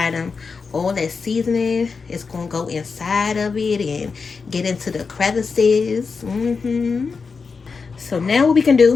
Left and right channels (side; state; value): right; quieter; 5.0 dB